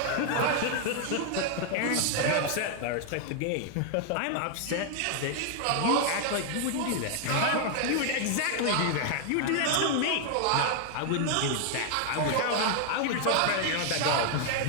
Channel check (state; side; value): different; both; correlation 0.00